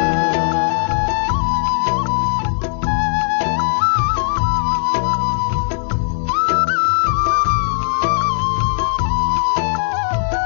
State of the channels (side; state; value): right; silent; 68 dB below the other